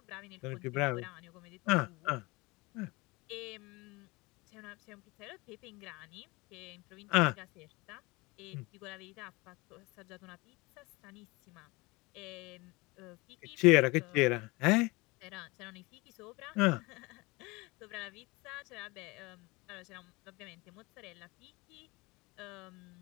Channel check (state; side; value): quieter; right; 24.3 dB